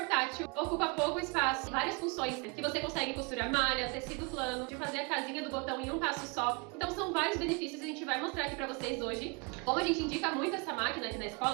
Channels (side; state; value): left; quieter; 31.8 dB